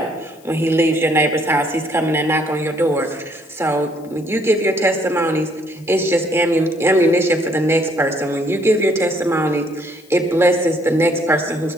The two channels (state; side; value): noise; left; hiss, 29 dB below the sound